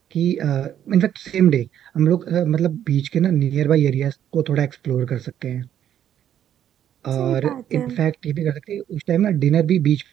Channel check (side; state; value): left; quieter; 10.3 dB